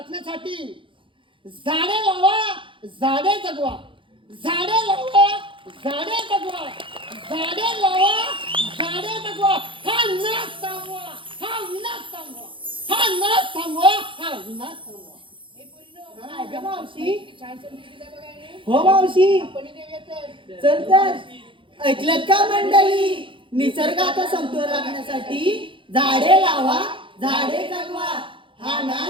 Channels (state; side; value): late; left; 0.25 ms